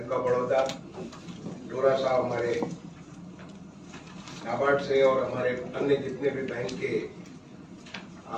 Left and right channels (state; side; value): identical; both; correlation 1.00